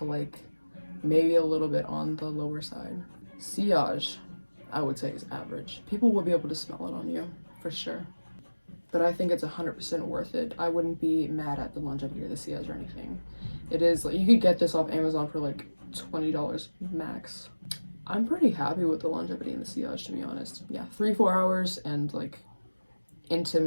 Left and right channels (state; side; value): inverted; both; correlation -1.00